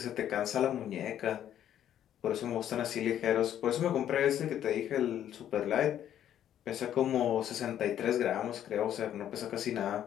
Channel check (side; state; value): right; quieter; 10.7 dB